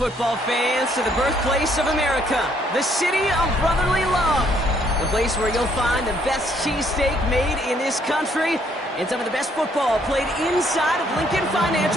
fans, to the birthplace of America, the city of brotherly love. The place where you'll find the best cheesesteak made in this country and some of the best football played inside of Lincoln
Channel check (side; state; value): both; normal; correlation 0.67